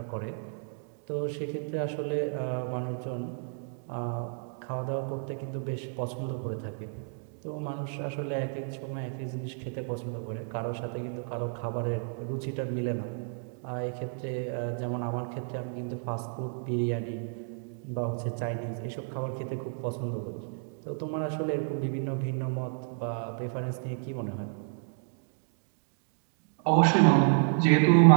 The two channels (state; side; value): silent; left; 57 dB below the other